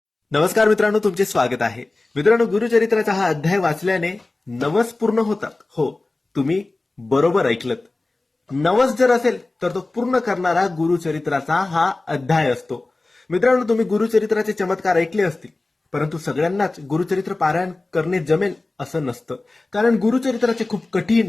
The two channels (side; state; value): right; quieter; 3.1 dB